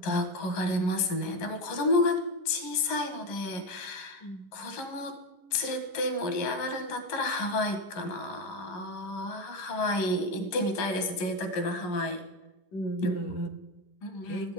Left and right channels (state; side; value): late; right; 10 ms